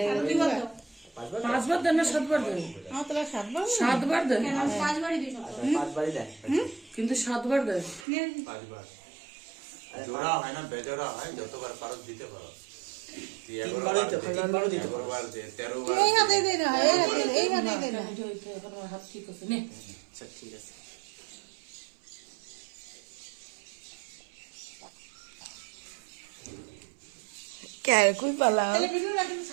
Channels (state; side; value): drops out; left; at 8.1 s